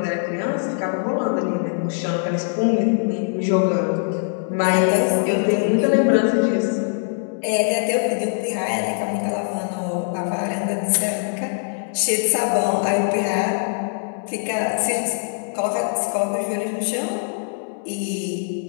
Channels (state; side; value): silent; right; 64 dB below the other